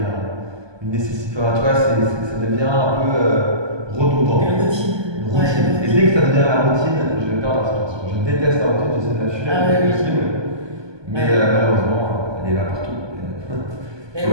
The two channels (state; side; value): late; left; 1.2 ms